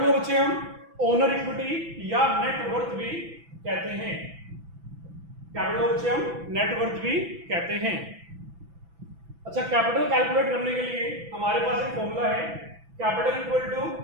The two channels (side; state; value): left; late; 6.0 ms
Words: को बच्चे हम ओनर इक्विटी या नेट वर्थ भी कहते हैं। कैपिटल को बच्चे हम नेट वर्थ भी कहते हैं। अच्छा, कैपिटल कैलकुलेट करने के लिए हमारे पास एक फॉर्मूला है, capital equal to